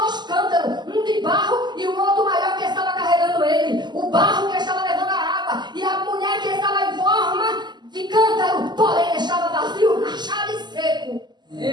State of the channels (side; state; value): left; late; 0.21 ms